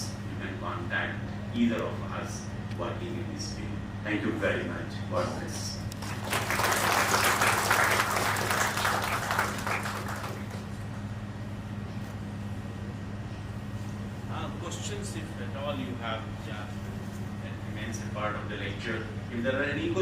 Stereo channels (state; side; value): identical; both; correlation 1.00